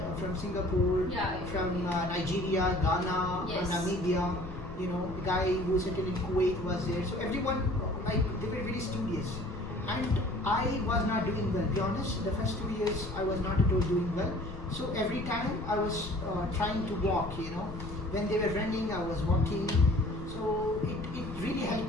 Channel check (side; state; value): left; noise; rumble, 11 dB below the sound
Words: from Singapore, from Nigeria, Ghana, Namibia. The guy who settled in Kuwait was there. So everyone, they were very studious. and I was not doing well. Be honest, the first 2 years I was not at all doing well. So every time I was trying to walk, when they were running, I was walking. So it really